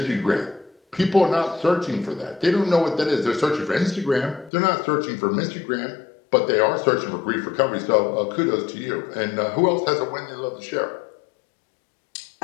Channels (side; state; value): right; drops out; at 4.5 s